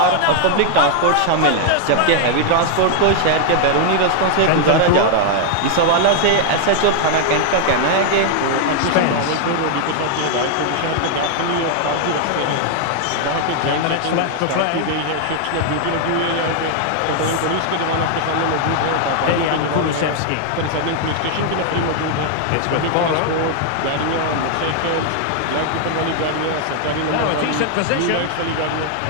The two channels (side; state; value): both; different; correlation 0.00